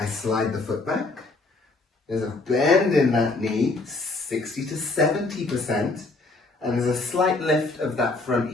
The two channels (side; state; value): right; quieter; 3.4 dB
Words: slide the foot back. There's a bend in that knee, 60 to 70%. And there's a slight lift of that front